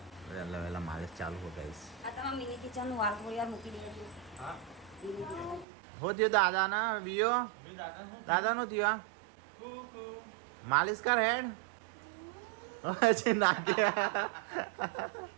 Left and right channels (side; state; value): left; drops out; at 5.7 s